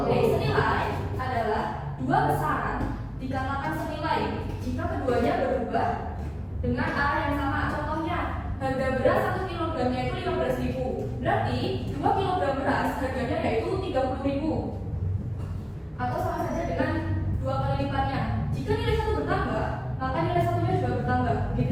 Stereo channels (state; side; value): identical; both; correlation 1.00